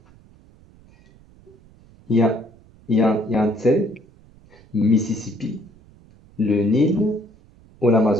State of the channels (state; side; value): noise; right; rumble, 27 dB below the sound